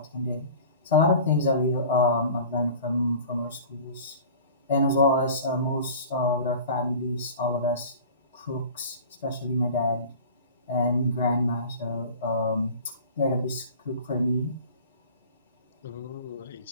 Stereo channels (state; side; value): inverted; both; correlation -0.41